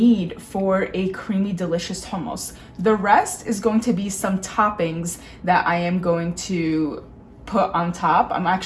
for a creamy, delicious hummus. The rest is going to be some toppings that I am going to put on top. I'm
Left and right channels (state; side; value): identical; both; correlation 1.00